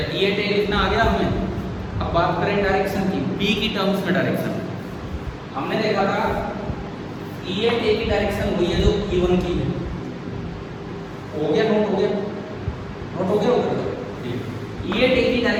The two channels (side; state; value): both; identical; correlation 1.00